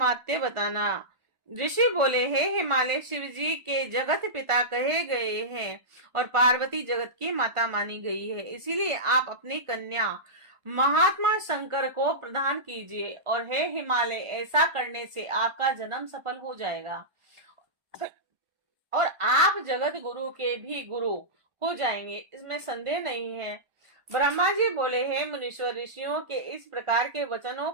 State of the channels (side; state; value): left; late; 1.4 ms